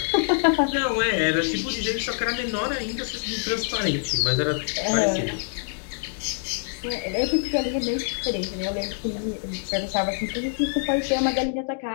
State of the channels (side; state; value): right; silent; digital silence